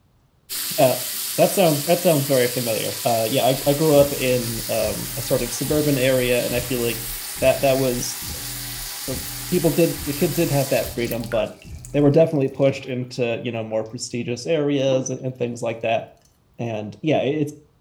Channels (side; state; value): both; identical; correlation 1.00